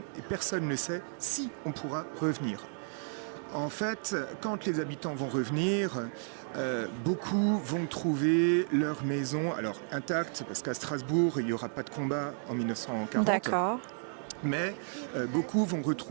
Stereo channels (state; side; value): silent; left; 56 dB below the other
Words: et personne ne sait si on pourra revenir. En fait, quand les habitants vont revenir, beaucoup vont trouver leur maison intacte, parce qu'à Strasbourg, il n'y aura pas de combat en 1940. D'accord. Mais beaucoup vont